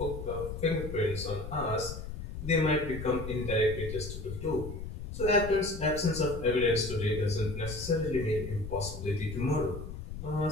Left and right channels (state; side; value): noise; left; rumble, 8 dB below the sound